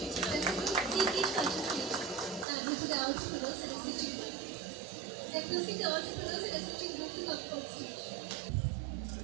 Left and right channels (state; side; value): drops out; left; at 2.5 s